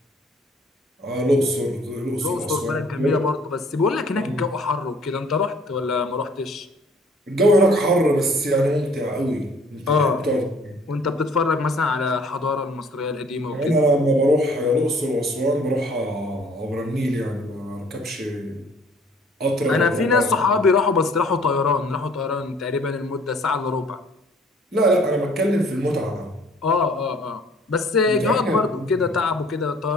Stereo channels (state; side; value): normal; both; correlation 0.56